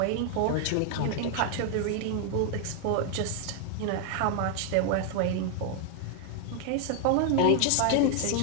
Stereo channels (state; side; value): different; both; correlation 0.00